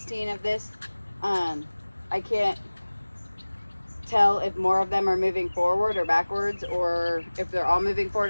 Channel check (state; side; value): inverted; both; correlation -1.00